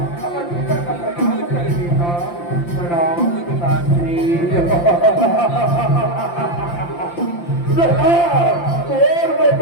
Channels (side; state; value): right; late; 5.8 ms